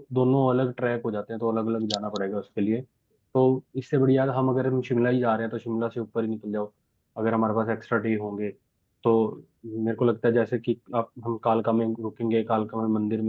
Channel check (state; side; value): identical; both; correlation 1.00